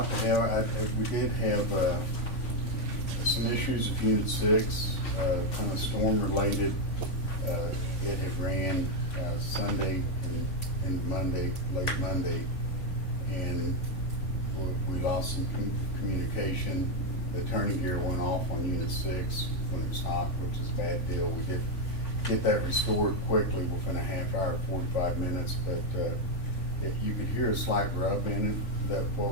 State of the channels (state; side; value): late; right; 3.5 ms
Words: to have. We did have some issues with Unit 6, kind of storm-related. It had ran Sunday and Monday, late Monday, and we lost some communication. The turning gear went off on Unit 6 when it was hot, which is a bad deal. We did get that restored quickly within a half hour, 45 minutes, but you could hear a slight rub in it. That